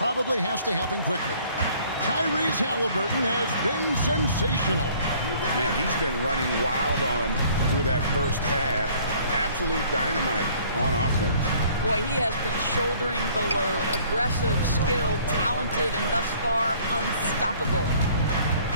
has to happen quickly. Tyrese Halliburton has been sensational. Man, he's been running wild on him through that first half. Absolute dynamite on offense. Boy, he has been shouldering the load. Aggressive, skilled, talented, and thus far unstoppable.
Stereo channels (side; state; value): both; inverted; correlation -0.56